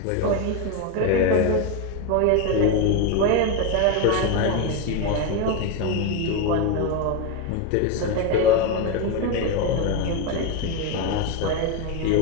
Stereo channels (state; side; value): different; both; correlation 0.03